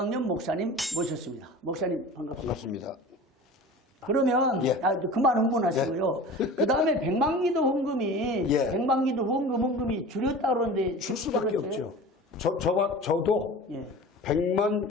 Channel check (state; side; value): normal; both; correlation 0.37